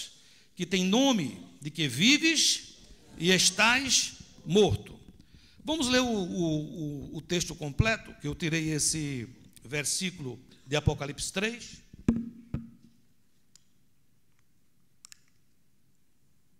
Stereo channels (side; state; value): both; identical; correlation 1.00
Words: que tem nome de que vives e estás morto. Vamos ler o texto completo, que eu tirei esse versículo de Apocalipse 3.